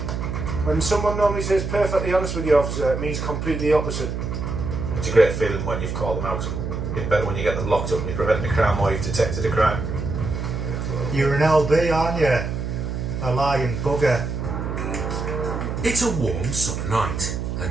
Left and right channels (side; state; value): right; noise; hum, 4 dB below the sound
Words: When someone normally says perfectly honest with you, officer, it means completely opposite. It's a great feeling when you've caught them out. It's better when you get them locked up and you're preventing a crime or you've detected a crime. You're an LB, aren't you? A lying bugger. It's a warm summer night,